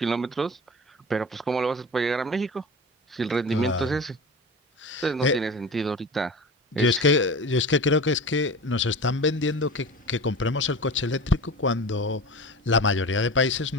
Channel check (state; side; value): normal; both; correlation 0.32